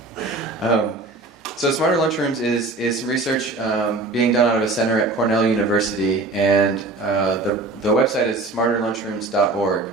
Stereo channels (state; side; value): quieter; left; 3.2 dB